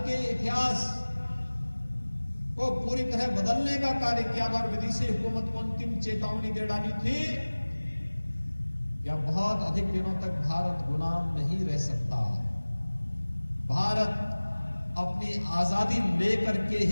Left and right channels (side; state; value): both; inverted; correlation -1.00